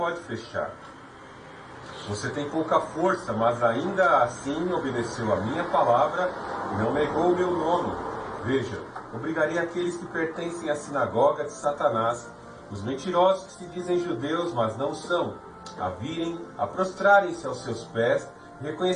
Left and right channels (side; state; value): both; identical; correlation 1.00